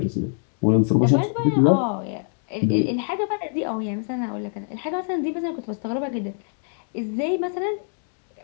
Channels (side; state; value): right; silent; digital silence